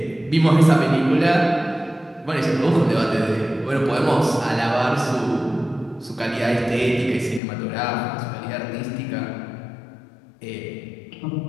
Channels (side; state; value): right; drops out; at 7.4 s